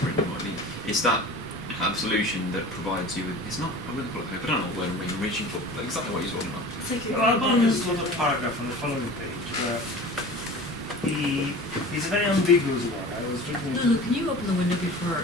written what I mean. It's that absolution that provides you with. It's not. I wouldn't call it hope. I don't know what word I'm reaching for, but exactly what he's talking about. Well, there's a little paragraph on the following page where he's a very ambiguous one. I was reading it. Lulu, can you open the window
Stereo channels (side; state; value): left; noise; hum, 29 dB below the sound